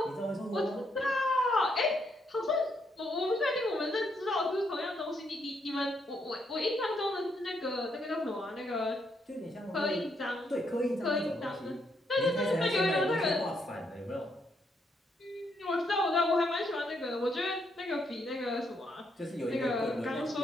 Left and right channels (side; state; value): both; normal; correlation 0.76